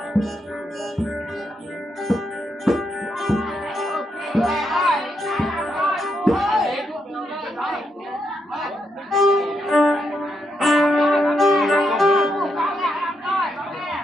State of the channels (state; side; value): normal; both; correlation 0.80